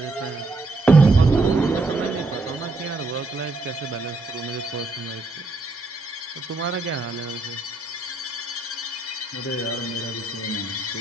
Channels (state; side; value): quieter; left; 3.1 dB